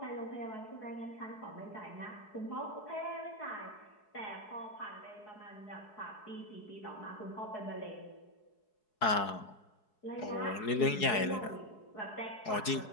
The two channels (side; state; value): right; late; 4.7 ms